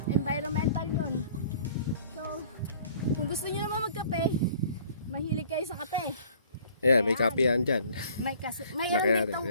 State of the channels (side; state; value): both; inverted; correlation -0.53